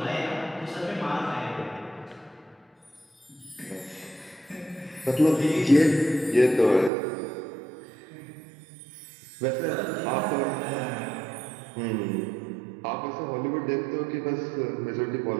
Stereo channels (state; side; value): drops out; left; at 6.9 s